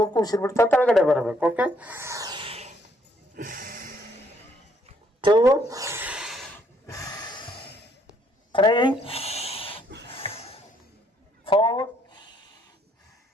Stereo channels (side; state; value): both; normal; correlation 0.69